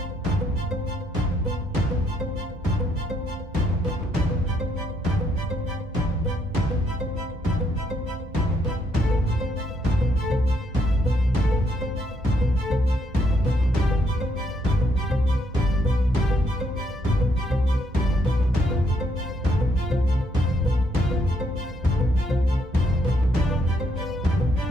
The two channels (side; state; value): both; normal; correlation 0.73